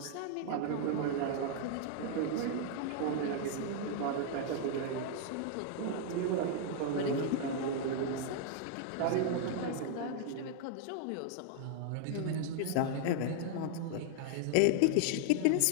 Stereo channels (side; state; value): both; different; correlation 0.00